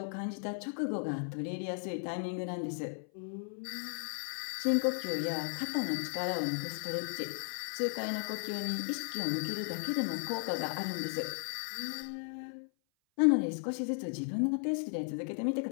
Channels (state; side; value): silent; right; 54 dB below the other